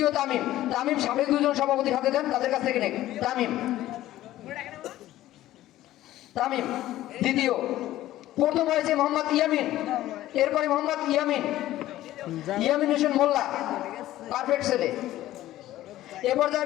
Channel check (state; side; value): quieter; right; 14.6 dB